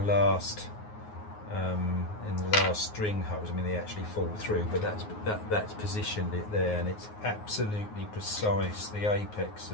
string holes, I mean, they actually fall through, but that's positioned it there, and it's absolutely precise. The apex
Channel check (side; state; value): right; late; 9.5 ms